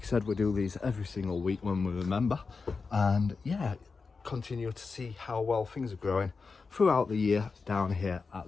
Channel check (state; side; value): quieter; right; 4.6 dB